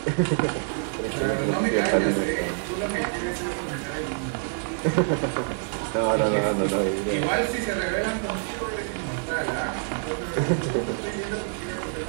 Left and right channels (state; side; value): silent; left; digital silence